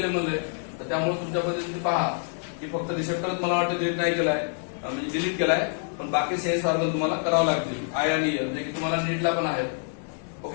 म्हणले. तर त्यामुळे तुमच्या पद्धतीने पहा की फक्त रिसेप्टरच मला वाटतं डिलीट नाही केलाय, म्हणजे डिलीट केलाय, पण बाकी सेन्स ऑर्गन तुम्हाला करावं लागतील आय आणि इयर, जे की तुम्हाला नीटला पण आहेत.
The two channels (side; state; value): right; silent; digital silence